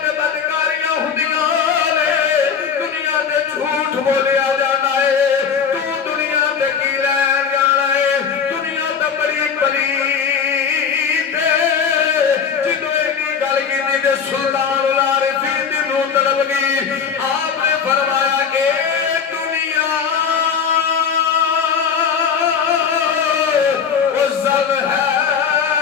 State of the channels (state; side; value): quieter; right; 6.7 dB